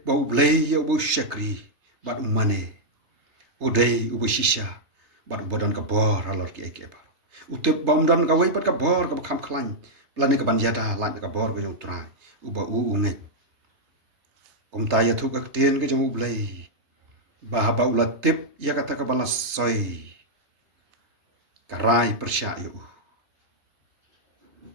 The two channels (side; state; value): left; late; 3.3 ms